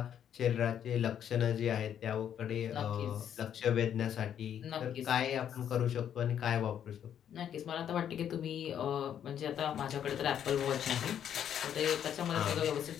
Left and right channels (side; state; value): right; quieter; 9.4 dB